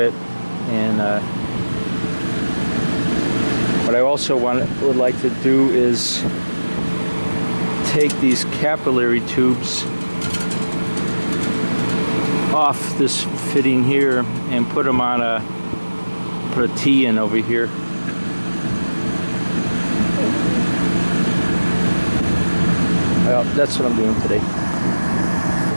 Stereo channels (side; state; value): both; inverted; correlation -1.00